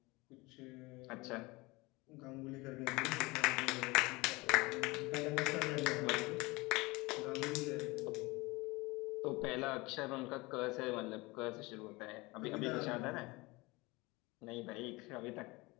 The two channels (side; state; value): right; quieter; 23.4 dB